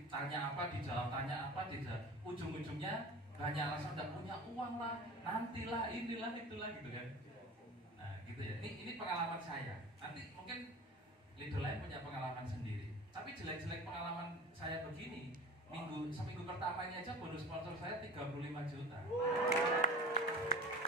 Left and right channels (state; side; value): normal; both; correlation 0.37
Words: tanya apa, dijawab tanya apa, ujung-ujungnya banyak alasan tidak punya uang lah, nantilah, inilah, itulah gitu kan. Nah gitu ya, ini pengalaman saya. Nanti mungkin leader lain punya pengalaman sendiri. Tapi jelek-jelek pengalaman saya begini, seminggu pertama ini aja bonus sponsor saya 35 juta.